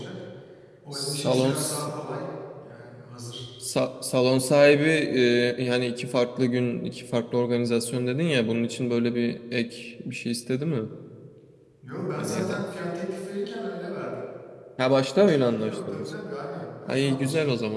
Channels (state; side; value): identical; both; correlation 1.00